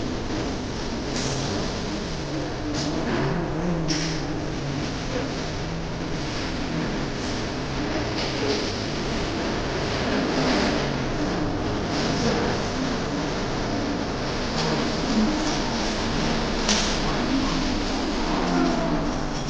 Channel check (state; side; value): identical; both; correlation 1.00